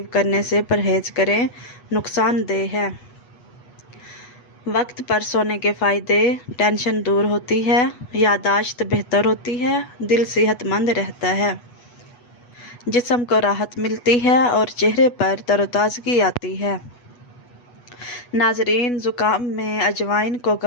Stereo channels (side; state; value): right; late; 8.2 ms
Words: کرنے سے پرہیز کریں، نقصان دہ ہے۔ وقت پر سونے کے فائدے، ٹینشن دور ہوتی ہے، یادداشت بہتر ہوتی ہے، دل صحت مند رہتا ہے، جسم کو راحت ملتی ہے اور چہرے پر تر و تازگی آتی ہے۔ ناظرین، زکام میں اجوائن کو